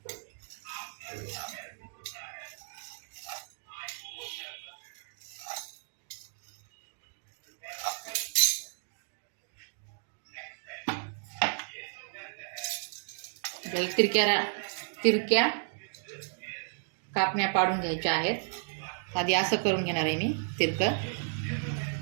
तिरक्या कापण्या पाडून घ्यायच्या आहेत. आधी असं करून घेणार आहे मी तिरकं.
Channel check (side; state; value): left; silent; digital silence